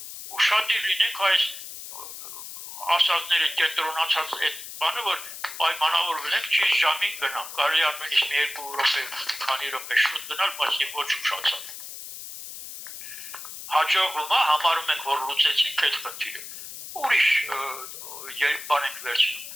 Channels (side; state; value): left; noise; hiss, 11 dB below the sound